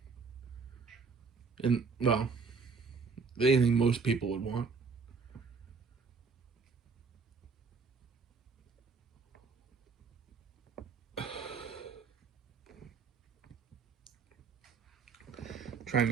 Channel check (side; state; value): left; quieter; 5.0 dB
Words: And, well, anything most people would want. Trying